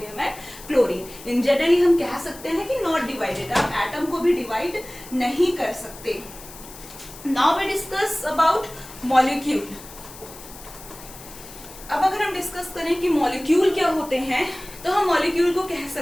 and chlorine. In generally हम कह सकते हैं कि नॉट डिवाइडेड। आप एटम को भी डिवाइड नहीं कर सकते। Now we discuss about molecule. अब अगर हम डिस्कस करें कि मॉलिक्यूल क्या होते हैं, तो हम मॉलिक्यूल को कह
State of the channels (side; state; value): left; noise; hiss, 17 dB below the sound